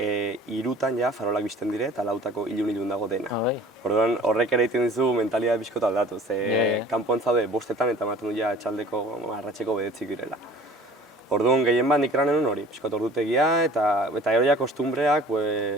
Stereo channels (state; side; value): normal; both; correlation 0.48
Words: ja farolak bizten dire eta 4 ilun dago dena. Orduan horrek ere egiten dizu mentalitatea bizkota aldatu, kanpoan zaude 5 eta ematen du ja etxaldeko arratseko 9 direla. Orduan gehien bat nik eranen hori, pixkot ordutegia eta gero ja kostumbreak,